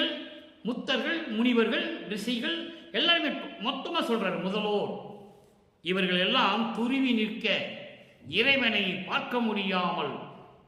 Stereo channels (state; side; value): identical; both; correlation 1.00